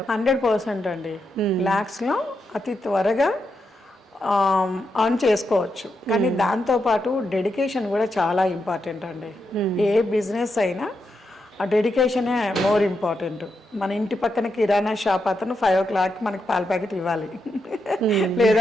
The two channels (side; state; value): both; normal; correlation 0.84